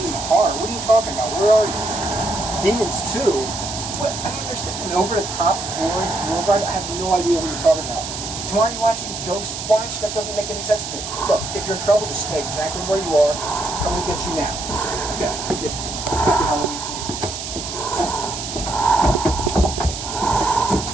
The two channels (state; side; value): noise; right; hiss, 7 dB below the sound